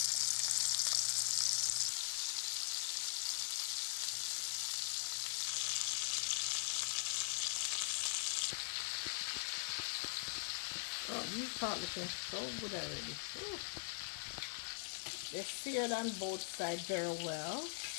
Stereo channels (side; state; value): right; silent; digital silence